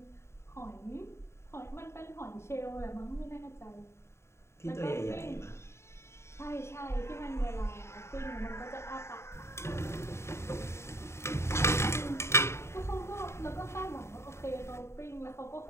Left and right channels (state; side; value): late; right; 0.13 ms